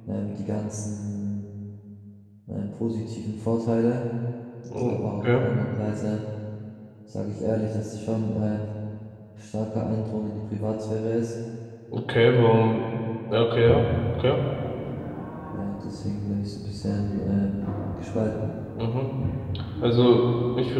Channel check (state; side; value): identical; both; correlation 1.00